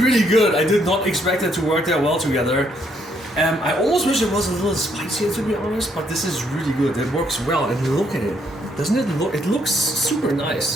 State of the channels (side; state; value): both; normal; correlation 0.71